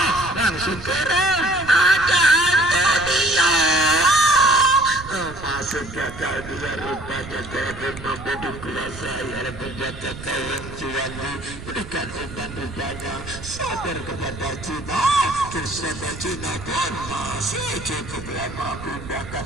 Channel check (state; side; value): noise; right; rumble, 13 dB below the sound